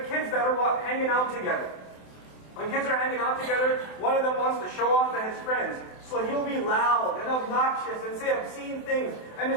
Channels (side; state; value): right; late; 28 ms